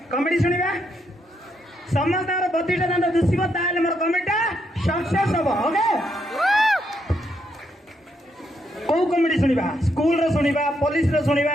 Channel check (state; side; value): normal; both; correlation 0.77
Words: कॉमेडी सुनिबा समस्त 32 टा दांत दुसिबो ताले मोर कॉमेडीटा सक्सेस हो ओके। कौ कॉमेडी सुनिबा स्कूल रे सुनिबा पुलिस रे सुनिबा